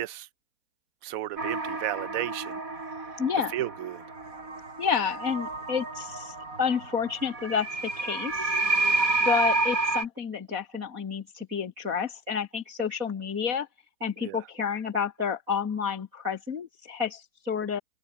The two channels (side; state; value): left; late; 4.1 ms